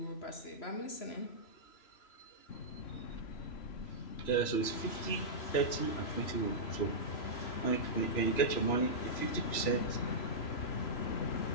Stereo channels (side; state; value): right; late; 3.0 ms